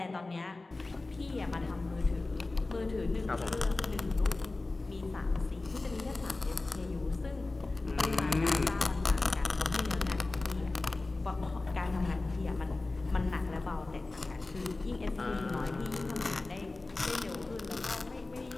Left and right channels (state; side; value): quieter; right; 3.2 dB